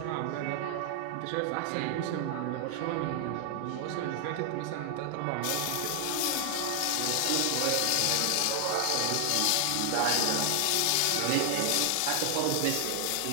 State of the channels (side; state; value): both; different; correlation 0.00